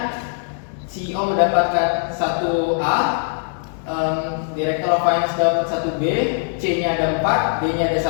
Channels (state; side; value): silent; right; digital silence